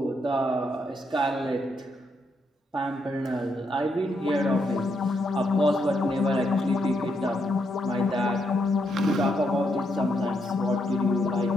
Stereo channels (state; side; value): normal; both; correlation 0.78